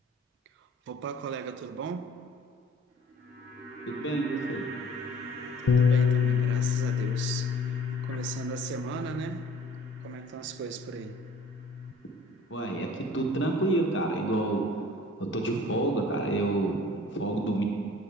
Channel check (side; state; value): both; normal; correlation 0.52